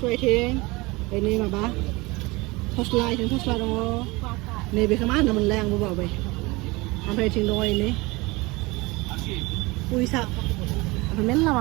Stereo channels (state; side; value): quieter; left; 23.5 dB